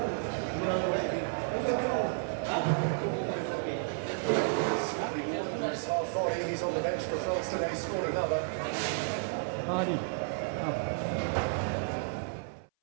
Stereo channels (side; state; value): left; silent; 56 dB below the other